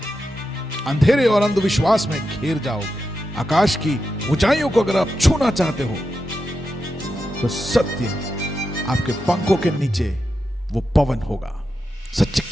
अंधेरे और अंधविश्वास में घिर जाओगे। आकाश की ऊंचाइयों को अगर आप छूना चाहते हो तो सत्य आपके पंखों के नीचे वो पवन होगा। सत्य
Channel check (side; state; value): both; normal; correlation 0.88